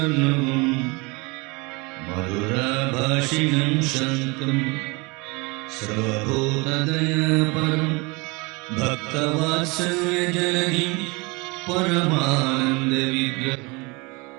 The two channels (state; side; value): quieter; left; 27.0 dB